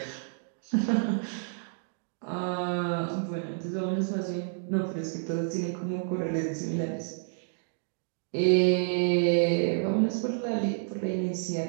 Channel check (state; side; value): silent; left; digital silence